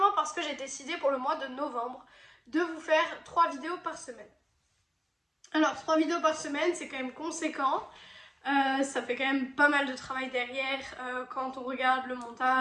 parce que j'ai décidé pour le mois de novembre de vous faire 3 vidéos par semaine. Alors 3 vidéos par semaine c'est quand même conséquent. Ça fait quand même pas mal de travail derrière quand on regarde le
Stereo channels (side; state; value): both; identical; correlation 1.00